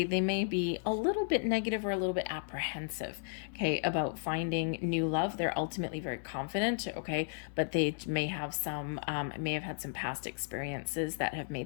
They may be a little bit negative or a little bit apprehensive, okay, about finding new love. They're ultimately very confident, okay, but they may have had some past experiences that have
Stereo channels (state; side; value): silent; right; digital silence